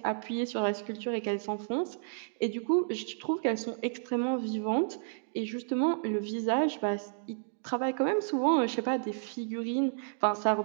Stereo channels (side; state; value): left; silent; digital silence